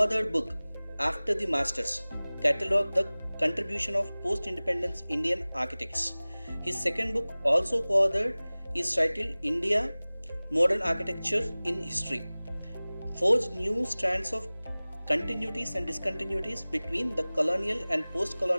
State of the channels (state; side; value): inverted; both; correlation -0.99